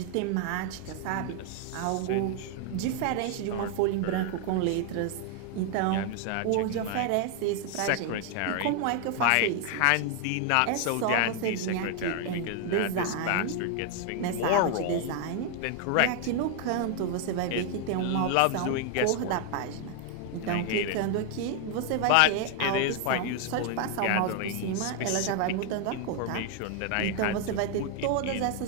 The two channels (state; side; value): different; both; correlation 0.00